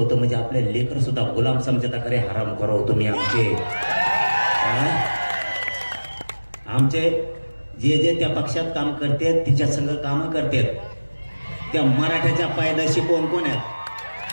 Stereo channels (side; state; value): both; inverted; correlation -1.00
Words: म्हणजे आपले लेकर सुद्धा गुलाम समजता. खरे हराम करो तुम्ही आमचे जे जे त्या पक्षात काम करतात, तिच्या संग काम करतात, त्या मराठ्याच्या पायदाशी कोण कोण आहेत?